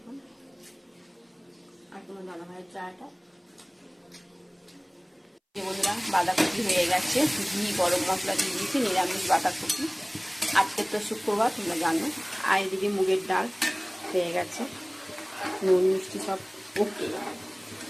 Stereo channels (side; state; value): both; identical; correlation 1.00